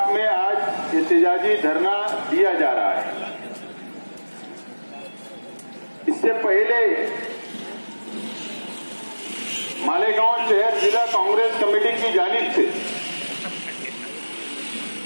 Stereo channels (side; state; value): both; inverted; correlation -1.00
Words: में आज एहतजाजी धरना दिया जा रहा है। इससे पहले मालेगांव शहर जिला कांग्रेस कमेटी की जानिब से